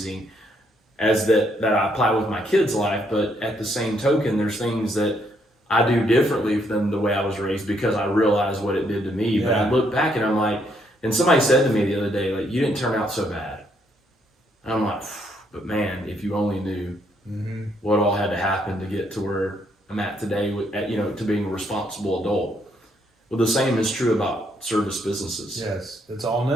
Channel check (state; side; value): normal; both; correlation 0.72